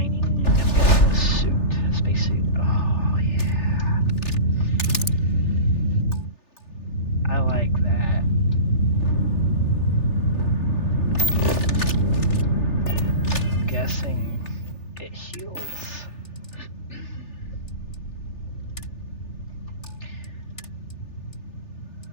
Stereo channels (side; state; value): right; late; 3.4 ms